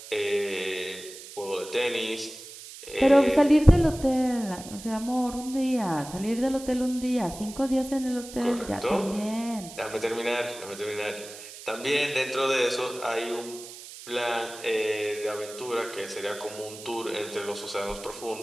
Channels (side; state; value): right; noise; hiss, 15 dB below the sound